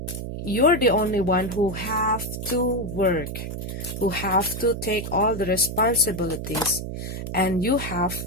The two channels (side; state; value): right; noise; hum, 6 dB below the sound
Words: you're the only one who have to work, who have to take all the responsibilities, and you have,